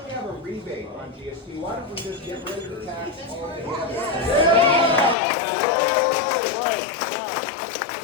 we have a rebate on GST? Why don't we just get rid of the tax altogether?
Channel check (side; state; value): right; drops out; at 5.2 s